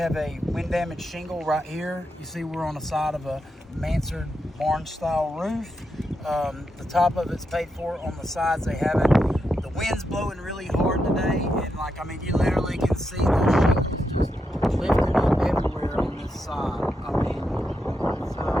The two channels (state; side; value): normal; both; correlation 0.84